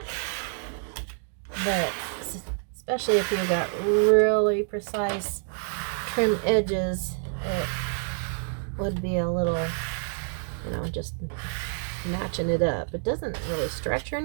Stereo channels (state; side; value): silent; left; 60 dB below the other